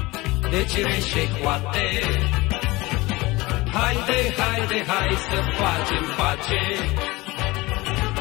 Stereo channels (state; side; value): quieter; right; 21.5 dB